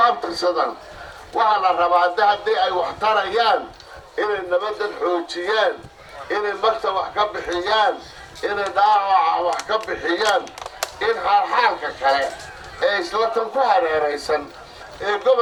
abtirsadaan waxaa la rabaa haddii ay wax tarayaan inay nabaddan xoojiyaan inay magta wax ka bixiyaan inay dhaawaca wax ka bixiyaan in xaalxaalka kale ee isla tan ku hareeraysan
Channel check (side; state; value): both; identical; correlation 1.00